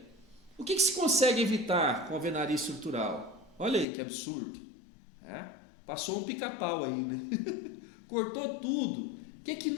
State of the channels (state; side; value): drops out; right; at 3.9 s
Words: O que se consegue evitar com a alvenaria estrutural? Olha aí que absurdo. Passou um pica-pau aí, né? Cortou tudo. O que